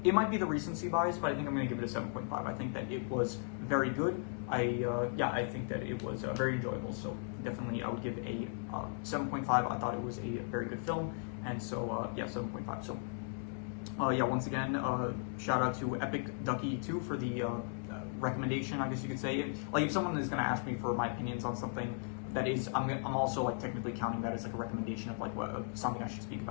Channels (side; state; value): right; silent; 53 dB below the other